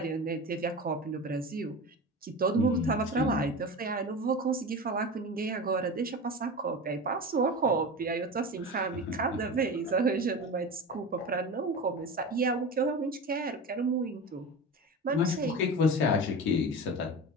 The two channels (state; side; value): normal; both; correlation 0.28